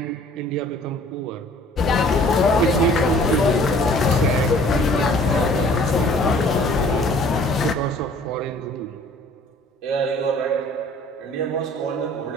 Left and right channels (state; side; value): normal; both; correlation 0.53